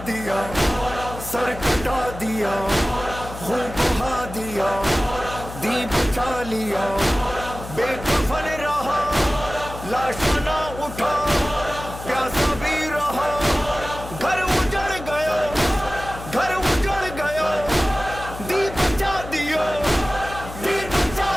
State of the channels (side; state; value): left; noise; hum, 12 dB below the sound